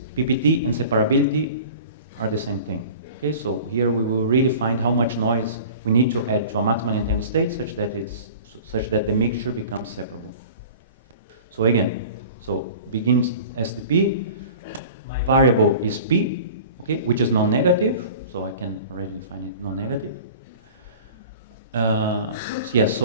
PPT and separability are the same thing. Okay, so here we will really find how much noise we need to add to a maximally entangled state such that the mixture becomes separable. So again, so begins SDP. My variable is P, okay, which is non-negative. So I can already define it non-negative. Yes,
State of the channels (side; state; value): both; inverted; correlation -0.42